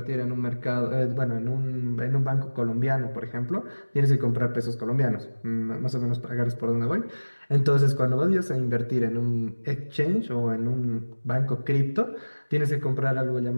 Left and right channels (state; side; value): inverted; both; correlation -1.00